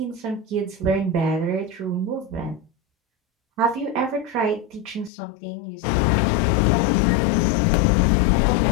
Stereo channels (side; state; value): right; drops out; at 5.1 s